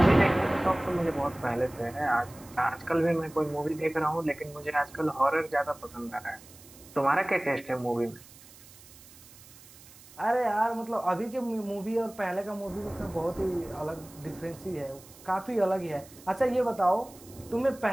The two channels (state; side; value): noise; right; hiss, 21 dB below the sound